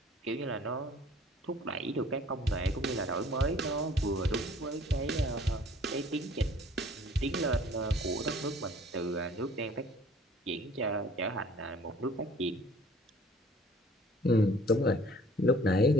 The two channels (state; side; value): normal; both; correlation 0.52